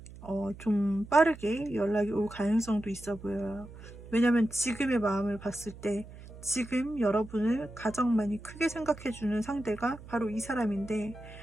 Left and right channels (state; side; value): noise; right; hum, 16 dB below the sound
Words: 좀 빠르게 연락이 올 가능성도 있어 보여요. 왜냐면 지금의 마음을 봤을 때 지금 여러분을 가장 많이 크게 생각해주는 상대가 바로 이 사람인데,